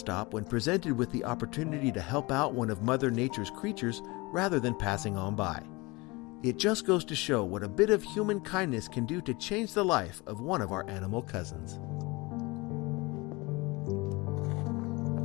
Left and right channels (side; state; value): right; quieter; 24.6 dB